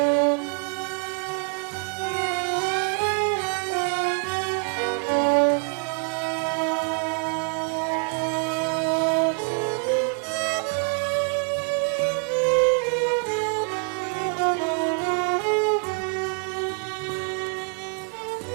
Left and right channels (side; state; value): left; quieter; 39.4 dB